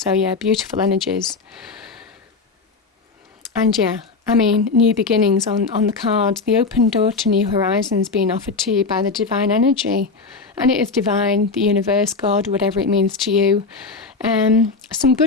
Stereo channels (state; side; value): quieter; right; 4.3 dB